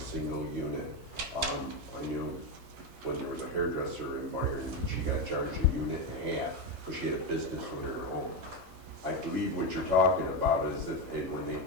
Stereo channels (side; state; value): both; normal; correlation 0.11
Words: single unit. I knew when there was a hairdresser in Byron, she got charged a unit and a half because she had a business within her home. I believe what you're talking about is that when they